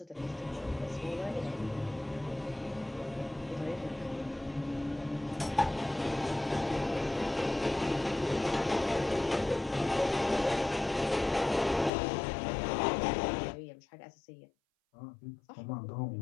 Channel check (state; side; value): drops out; right; at 11.9 s